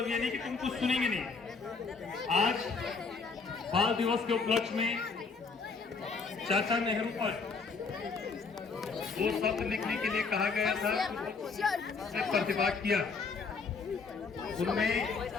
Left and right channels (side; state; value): right; quieter; 4.7 dB